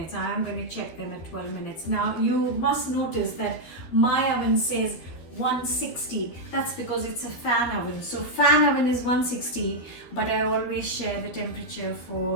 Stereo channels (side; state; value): right; late; 13 ms